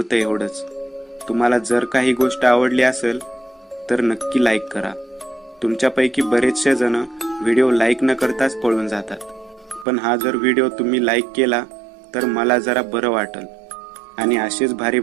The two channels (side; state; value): left; drops out; at 9.9 s